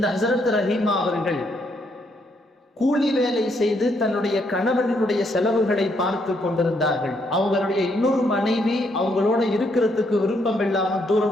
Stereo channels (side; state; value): both; normal; correlation 0.74